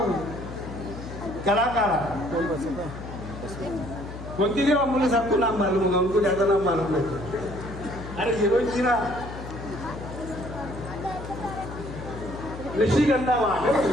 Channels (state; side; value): noise; left; hum, 10 dB below the sound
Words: कलाकार बोलती थी, मुझे सबको नाम मालूम होगा, उनको ज्यादा नाम मालूम नहीं। अरे हीरोइन थी ना ऋषिगंधा